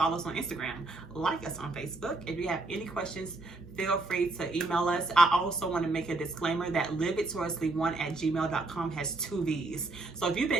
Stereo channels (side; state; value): left; quieter; 3.1 dB